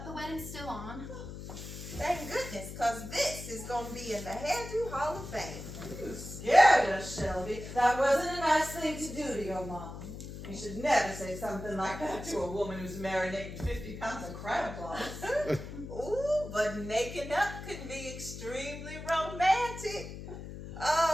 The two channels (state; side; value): noise; left; hum, 10 dB below the sound